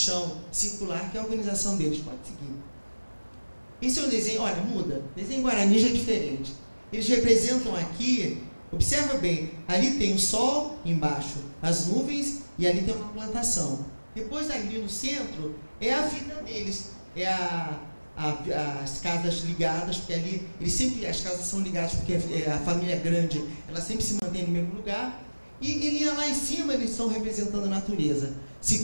circular, que é a organização deles. Pode seguir. Esse é o desenho, olha, muda. Desenho Guarani já é diferente. Eles representam aqui, observa bem, ali tem o sol embaixo, as nuvens, e ali tem uma plantação. Depois ali no centro é a vida deles, é as casas ligadas, porque ali as casas são ligadas porque a família é grande, ela sempre se mantém no mesmo lugar, e lá em cima eles estão representando a natureza.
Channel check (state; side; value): inverted; both; correlation -1.00